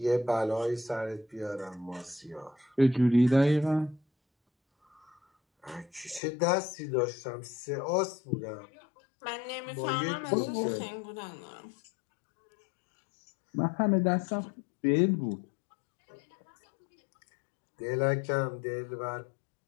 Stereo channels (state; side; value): drops out; right; at 6.2 s